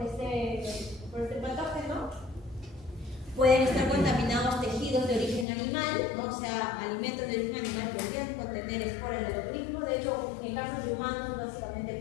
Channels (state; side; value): drops out; right; at 5.5 s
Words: este patógeno. Pueden estar contaminados tejidos de origen animal, ¿no? O sea, alimentos de origen animal podrían contener esporas del botulismo, de hecho, en casos de humanos, básicamente